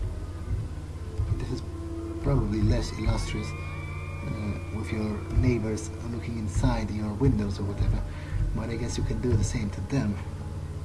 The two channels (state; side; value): identical; both; correlation 1.00